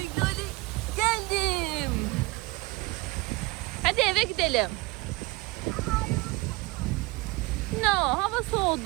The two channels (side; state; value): left; quieter; 23.1 dB